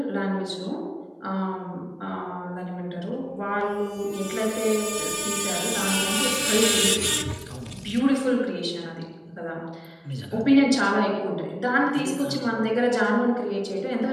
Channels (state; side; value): identical; both; correlation 1.00